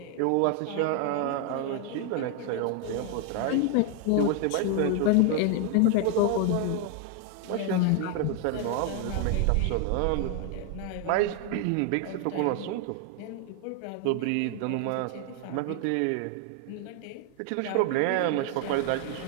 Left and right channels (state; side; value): different; both; correlation 0.01